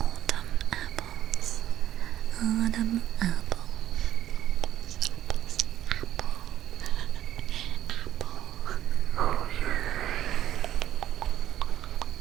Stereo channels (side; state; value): left; quieter; 12.2 dB